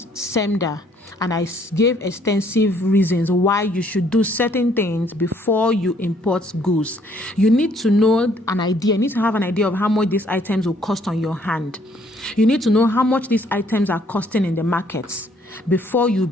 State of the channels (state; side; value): normal; both; correlation 0.65